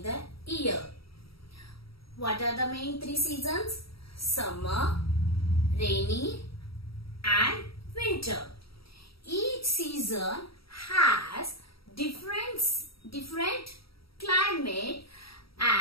the year. What are the main 3 seasons? Summer, rainy and winter. Each season has different climate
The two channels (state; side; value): late; right; 0.75 ms